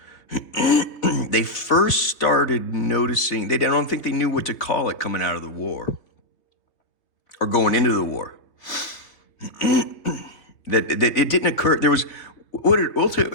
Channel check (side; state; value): right; late; 3.3 ms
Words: They first started noticing, I don't think they knew what to call it coming out of the war or going into the war. that it didn't occur. There was,